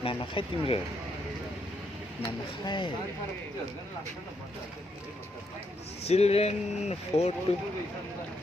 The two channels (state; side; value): normal; both; correlation 0.77